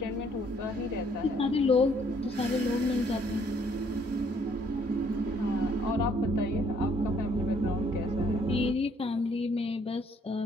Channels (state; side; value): normal; both; correlation 0.65